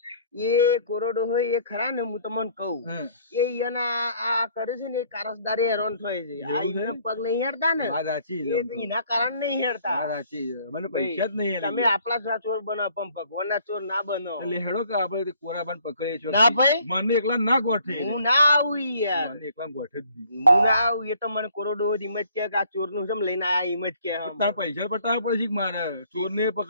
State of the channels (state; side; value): inverted; both; correlation -0.60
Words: એ કોરોડો હોય એ ખરા ને હું તમને કહું એ એના આ કરે છે ને એ કારસદારે હેરાન થાય છે આ એને પગ નહીં હેડતા ને વાત સાચી એ એના કારણ નહીં હેડતા વાત સાચી મને પૈસા જ નહીં તમે આપણા ચોર બનો પણ ભગવાનના ચોર ના બનો એટલે હેડો કે આપણે કોરાબાન પકડીએ છો ના ભાઈ મને એકલા ના ગોઠે હું ના આવું યાર મને એકલા ગોઠે જ નહીં હું ના આવું એ તો મને કોરોડો હિંમત કે આ ચોર નું જેમ લઈને આયા હિંમત કે તાર પૈસા બતાવવા પડે છે મારે ચોર ને